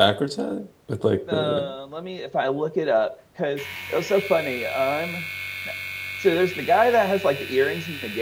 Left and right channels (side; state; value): both; identical; correlation 1.00